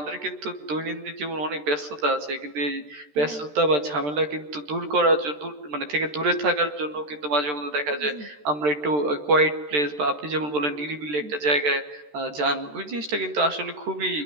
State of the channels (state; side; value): late; left; 13 ms